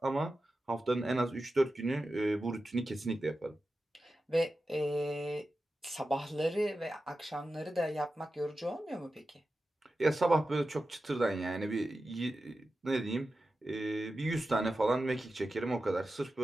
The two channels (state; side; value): normal; both; correlation 0.93